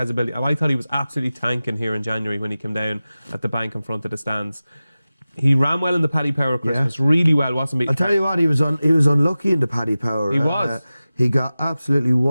ability. And I thought he was absolutely tanking here in January when he came down at the bank in front of the stands. He ran well in the Paddy Power Christmas, really well, wasn't he? I'll tell you what, he was unlucky in the Paddy Power. He was. He got absolutely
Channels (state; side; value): inverted; both; correlation -0.96